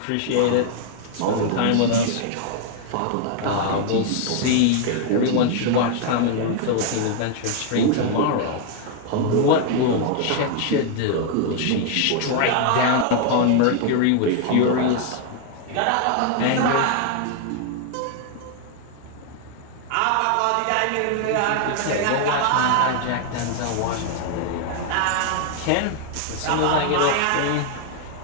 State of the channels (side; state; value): both; different; correlation 0.00